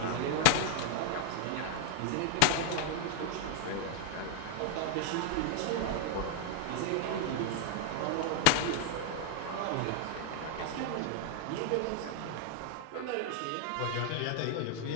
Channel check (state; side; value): different; both; correlation 0.00